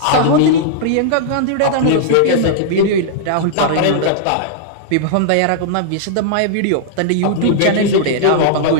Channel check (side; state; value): both; different; correlation -0.01